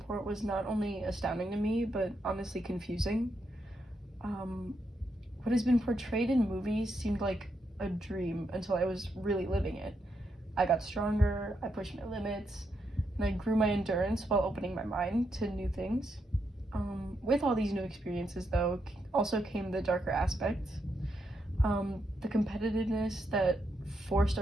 was not only astounding to me, but honestly confusing. Um, what has been portrayed in movies seemed like a dream until I was really living it. I got stronger, I pushed my limits, and I grew my endurance while opening my mind to new things. With all these new experiences, though, also came the darker aspects. The competitiveness that forced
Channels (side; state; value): both; normal; correlation 0.81